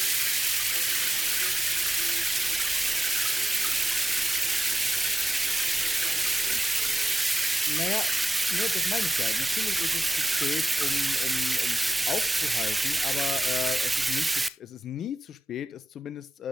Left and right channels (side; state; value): both; normal; correlation 0.94